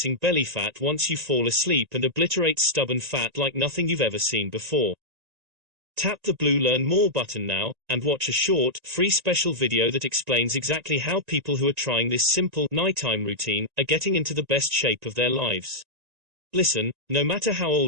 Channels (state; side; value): late; left; 1.9 ms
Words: belly fat once you fall asleep and obliterates stubborn fat like nothing you've ever seen before. Tap the blue Learn More button now, and watch a short, free special video that explains exactly how people who are trying this simple, nighttime routine are getting into the best shape of their lives. Listen, no matter how